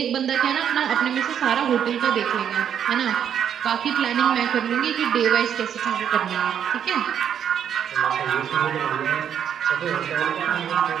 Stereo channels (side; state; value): left; quieter; 8.9 dB